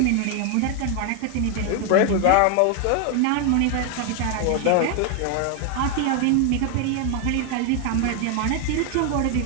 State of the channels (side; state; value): both; different; correlation 0.01